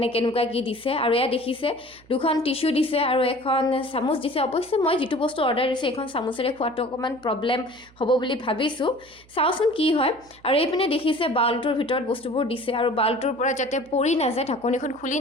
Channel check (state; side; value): noise; right; hum, 27 dB below the sound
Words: কেনেকুৱা কি দিছে আৰু এয়া দেখিছে দুখন টিস্যু দিছে আৰু এখন চামুচ দিছে অৱশ্যে মই যিটো বস্তু অৰ্ডাৰ দিছোঁ এখন চামুচেৰে খোৱাটো অকণমান প্ৰব্লেম হ'ব বুলি ভাবিছোঁ চাওঁচোন কি হয় আৰু এইপিনে দেখিছে বাউলটোৰ ভিতৰত বস্তুবোৰ দিছে আৰু বাউলটোৰ পৰা যাতে পৰি নাযায় ঢাকনিখন খুলি